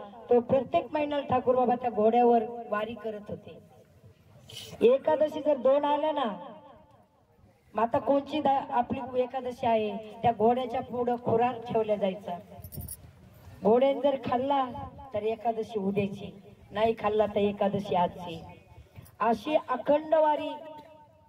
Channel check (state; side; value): identical; both; correlation 1.00